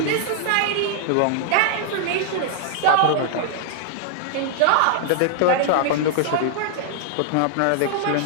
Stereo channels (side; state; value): both; different; correlation 0.00